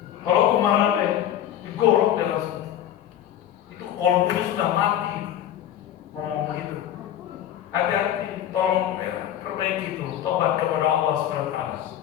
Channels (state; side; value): quieter; right; 11.0 dB